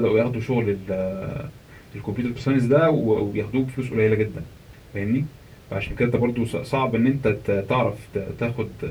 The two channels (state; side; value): identical; both; correlation 1.00